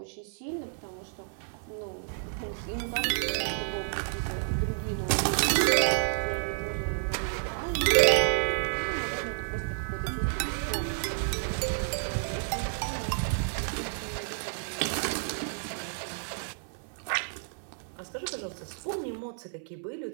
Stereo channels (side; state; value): left; silent; 57 dB below the other